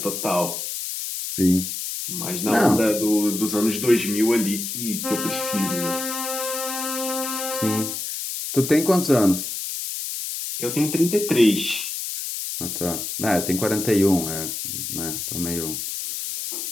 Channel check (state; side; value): noise; left; hiss, 5 dB below the sound